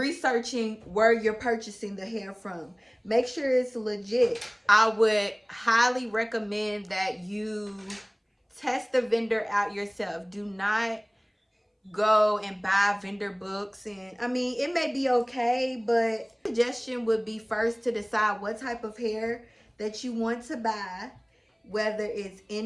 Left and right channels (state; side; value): identical; both; correlation 1.00